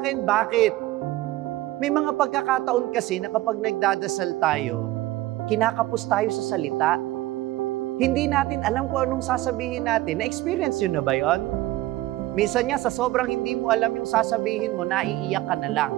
bakit? May mga pagkakataon kasi na kapag nagdadasal tayo, kinakapos tayo sa salita. Hindi natin alam kung anong sasabihin natin. Na-experience yun na ba yun? Minsan nga, sa sobrang hindi mo alam yung sasabihin mo, naiiyak ka na lang.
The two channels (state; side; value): quieter; left; 16.8 dB